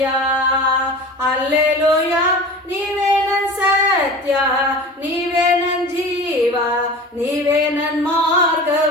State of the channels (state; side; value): normal; both; correlation 0.36